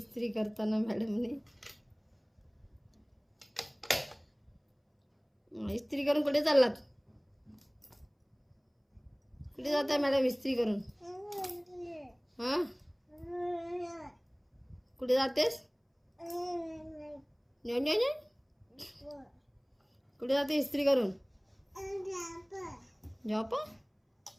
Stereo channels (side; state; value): both; identical; correlation 1.00